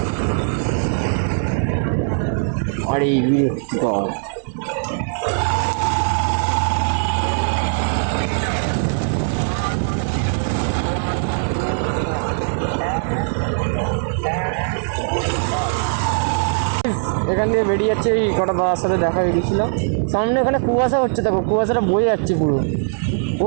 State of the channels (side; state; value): left; silent; 58 dB below the other